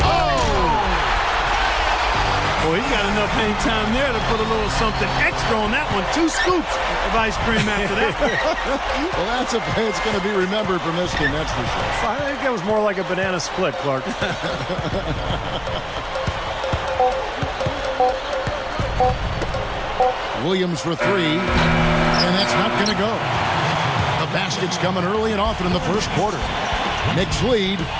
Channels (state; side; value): identical; both; correlation 1.00